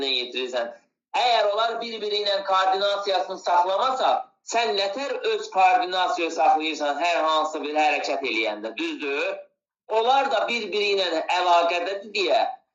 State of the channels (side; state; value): both; identical; correlation 1.00